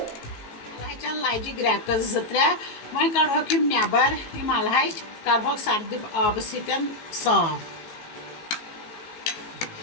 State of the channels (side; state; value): right; late; 19 ms